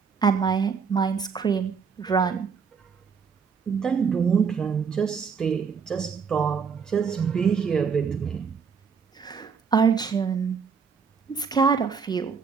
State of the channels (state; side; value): quieter; left; 6.0 dB